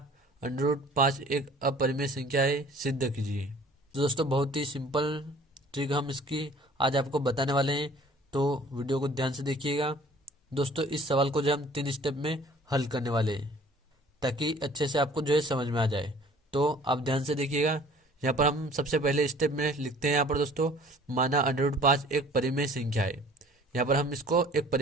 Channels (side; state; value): both; normal; correlation 0.51